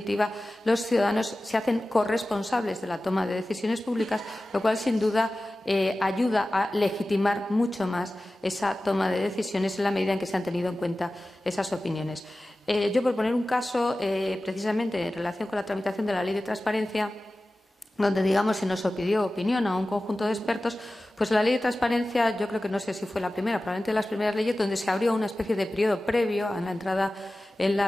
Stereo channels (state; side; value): normal; both; correlation 0.96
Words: los ciudadanos se hacen corresponsables de la toma de decisiones públicas, lo cual, sin duda, ayuda a legitimar mucho más esa toma de decisiones en la medida en que se han tenido en cuenta esas opiniones. Yo, por poner un caso, precisamente en relación con la tramitación de la Ley de Transparencia, donde, se nos pidió opinión a un conjunto de expertos, pues la Ley de Transparencia, yo creo que no sé si fue la primera, probablemente de las primeras leyes donde se abrió una especie de periodo previo a la entrada en